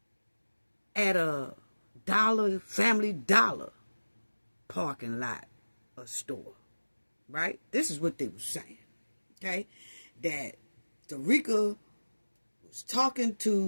at a Family Dollar parking lot or store, right? This is what they were saying, okay? That Dacara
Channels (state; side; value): inverted; both; correlation -1.00